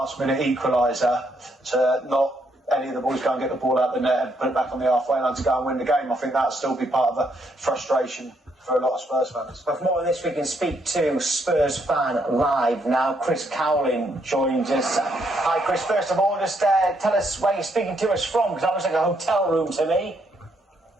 equaliser, to not any of the boys go and get the ball out the net and put it back on the halfway line to go and win the game. I think that'll still be part of the frustration for a lot of Spurs fans. But for more on this, we can speak to Spurs fan live now. Chris Cowlin joins us. Hi, Chris. First of all, just tell us where you're speaking to us from, because that looks like a hotel room to me.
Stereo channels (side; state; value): both; normal; correlation 0.74